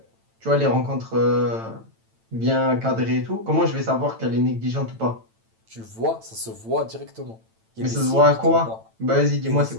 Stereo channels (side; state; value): left; late; 9.0 ms